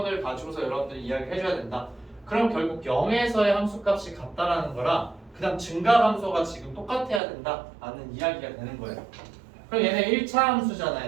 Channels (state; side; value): drops out; left; at 7.2 s